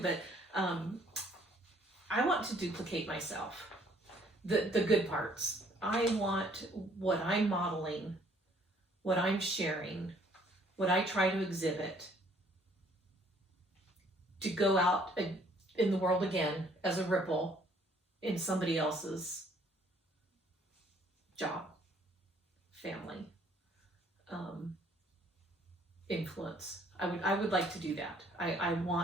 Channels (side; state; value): both; normal; correlation 0.61